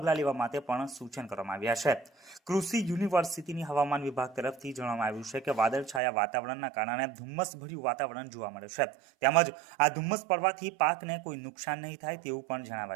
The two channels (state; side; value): drops out; left; at 6.0 s